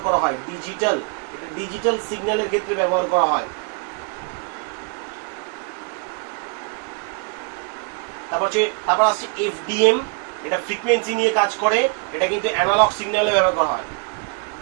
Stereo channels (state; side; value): quieter; left; 36.4 dB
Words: করা হয়, ডিজিটাল, এটা ডিজিটাল সিগন্যালের ক্ষেত্রে ব্যবহার করা হয়। তারপর আসছে এফডিএম, এটা ফ্রিকোয়েন্সি নিয়ে কাজ করে, এটা কিন্তু অ্যানালগ সিগন্যালে ব্যবহার করা হয়,